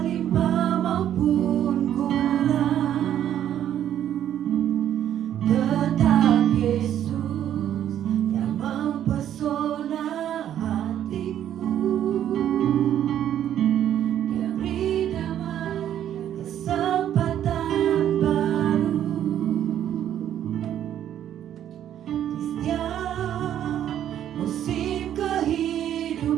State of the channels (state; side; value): quieter; left; 10.7 dB